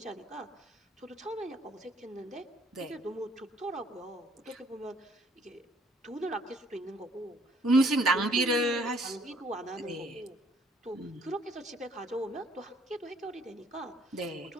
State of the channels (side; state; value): both; normal; correlation 0.63